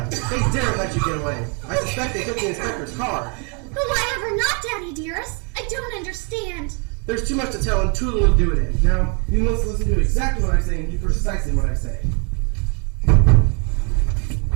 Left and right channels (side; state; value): left; quieter; 35.7 dB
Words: They dare let you get away. I suspect they took the inspector's car. But why ever not, Daddy dearest? I don't understand. There's too much to tell and too little to do it in. Now, you must listen to exactly what I say and do precisely what I say.